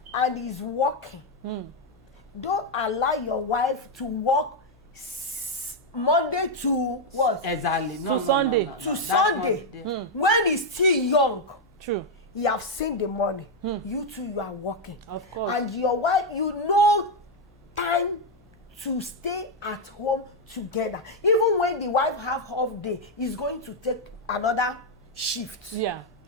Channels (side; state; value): both; normal; correlation 0.01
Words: and is working, don't allow your wife to work Monday to what? Exactly. Sunday. To Sunday. When he's still young. True. You have seen the money. You too, you are working. Of course. And your wife, you know time to stay at home together. Even when the wife have half day, is going to take another shift. Yeah.